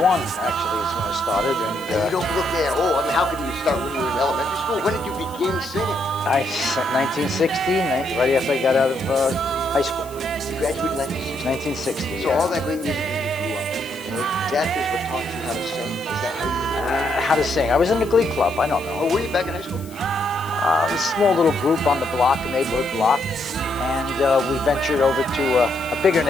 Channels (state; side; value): noise; left; hiss, 20 dB below the sound